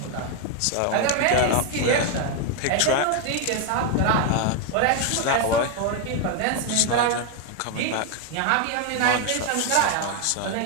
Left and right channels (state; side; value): different; both; correlation 0.01